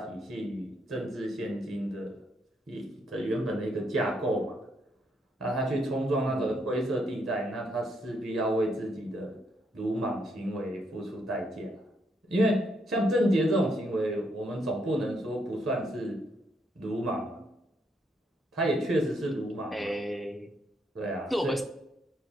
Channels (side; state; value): both; normal; correlation 0.75